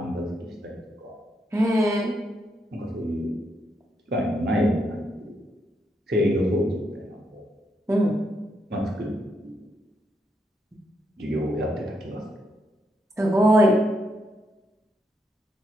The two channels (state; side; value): normal; both; correlation 0.79